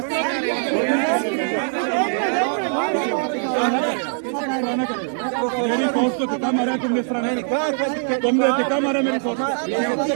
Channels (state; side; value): silent; left; 59 dB below the other